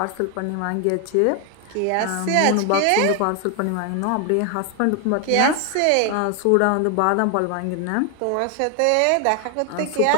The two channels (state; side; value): different; both; correlation 0.01